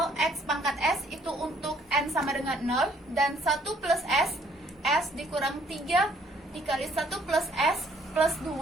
X pangkat S itu untuk N sama dengan 0, dan 1 plus S dikurang 3 dikali 1 plus S plus 2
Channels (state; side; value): normal; both; correlation 0.63